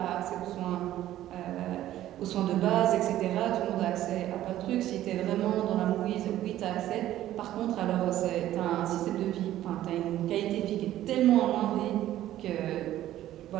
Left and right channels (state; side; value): quieter; left; 13.4 dB